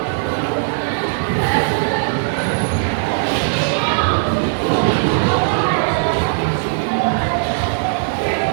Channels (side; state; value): left; silent; 59 dB below the other